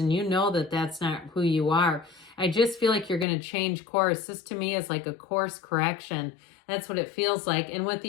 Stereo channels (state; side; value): drops out; right; at 3.2 s